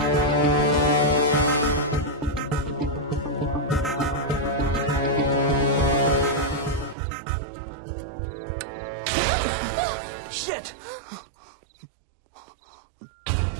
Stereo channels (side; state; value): left; drops out; at 7.0 s